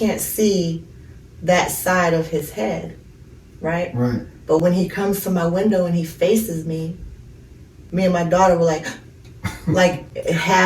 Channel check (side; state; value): both; identical; correlation 1.00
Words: see that side of his head, right? Right. But when he comes to my window and he faces me, me and my daughter were like